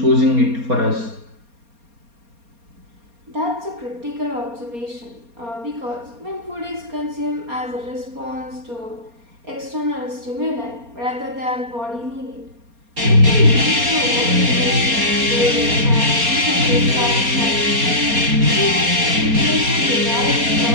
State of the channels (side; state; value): left; late; 4.3 ms